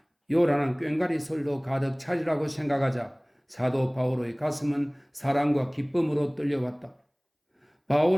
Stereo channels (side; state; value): both; identical; correlation 1.00